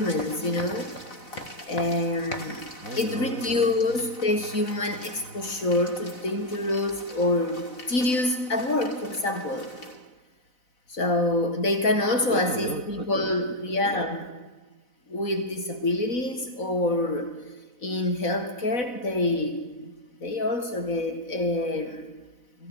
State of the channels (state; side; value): late; right; 4.0 ms